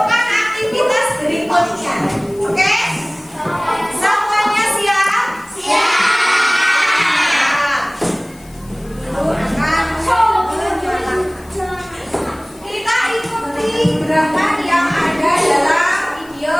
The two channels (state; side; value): noise; left; hiss, 26 dB below the sound